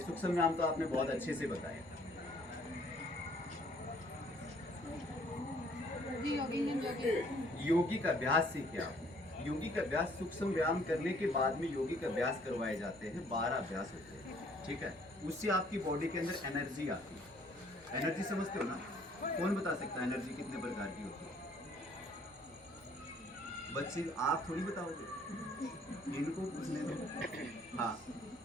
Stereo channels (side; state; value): both; normal; correlation 0.60